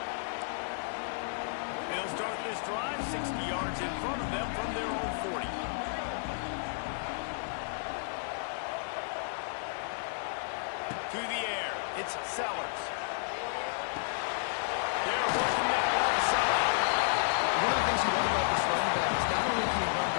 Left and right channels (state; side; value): silent; right; digital silence